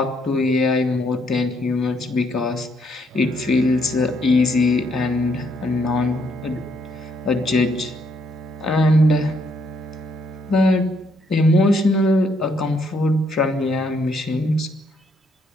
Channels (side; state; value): both; normal; correlation 0.72